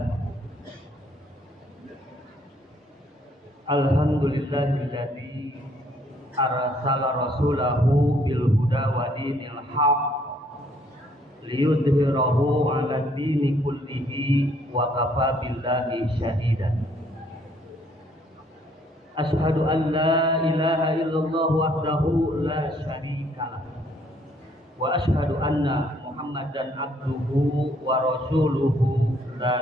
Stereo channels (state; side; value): normal; both; correlation 0.65